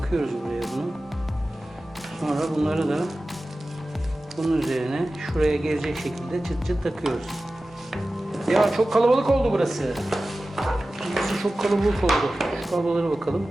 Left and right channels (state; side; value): normal; both; correlation 0.95